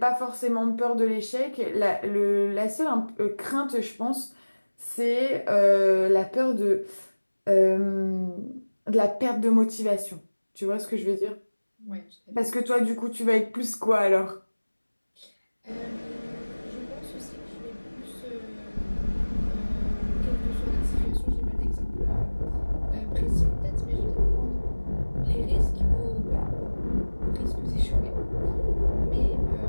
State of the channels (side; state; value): both; inverted; correlation -1.00